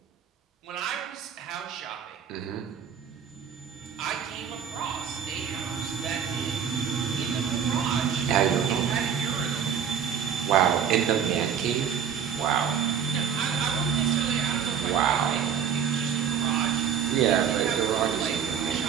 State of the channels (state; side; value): quieter; left; 7.8 dB